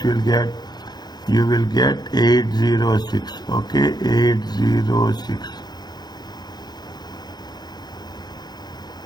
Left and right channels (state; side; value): late; right; 0.20 ms